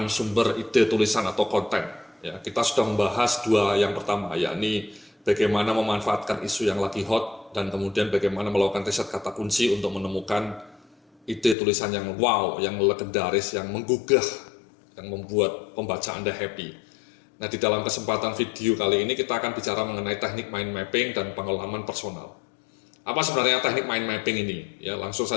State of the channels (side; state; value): right; drops out; at 11.6 s